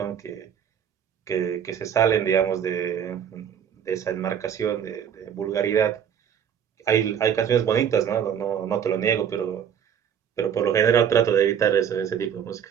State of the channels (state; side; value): quieter; left; 8.5 dB